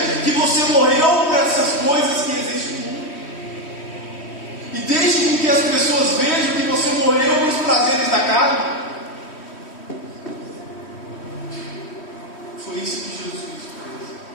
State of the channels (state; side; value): late; right; 3.1 ms